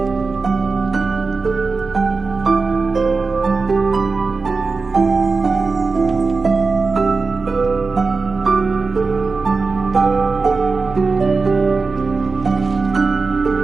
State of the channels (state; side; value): quieter; left; 4.2 dB